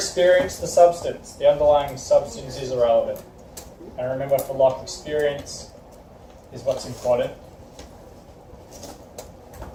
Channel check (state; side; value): identical; both; correlation 1.00